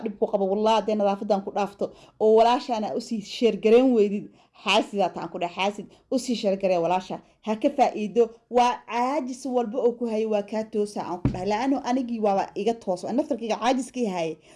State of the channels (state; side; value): identical; both; correlation 1.00